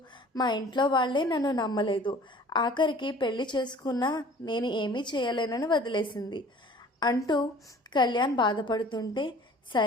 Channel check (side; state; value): both; normal; correlation 0.48